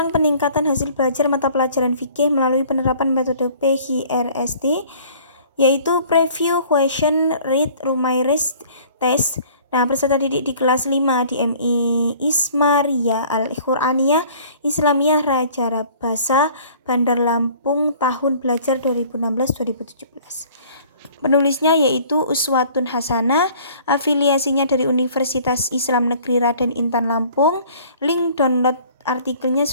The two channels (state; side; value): inverted; both; correlation -0.52